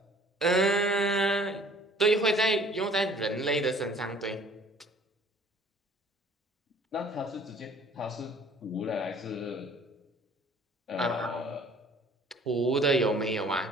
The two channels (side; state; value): both; normal; correlation 0.53